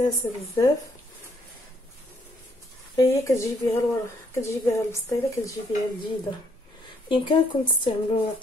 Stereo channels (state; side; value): normal; both; correlation 0.69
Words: بزاف. هي كتجيبيها البسطيله، كتجيبيها جديده. بامكانكم تستعملوا